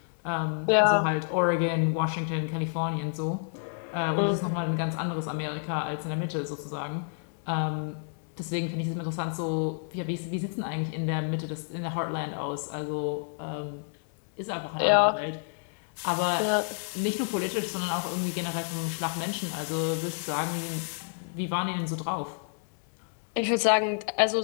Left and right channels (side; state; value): right; silent; digital silence